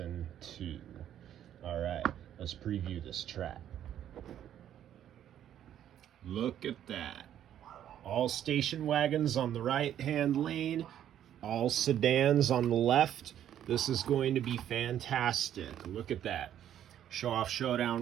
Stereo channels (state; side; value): quieter; left; 10.7 dB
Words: 2. Alright, let's preview this track. Look at that. All station wagons on the right hand lane, all sedans on the left. This is going to be fantastic. Look at that. Show off